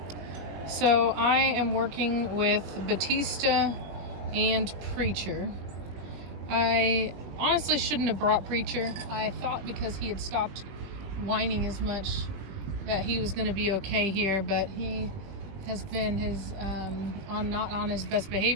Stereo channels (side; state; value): left; late; 20 ms